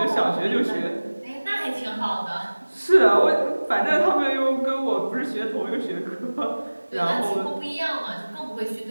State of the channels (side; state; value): both; inverted; correlation -1.00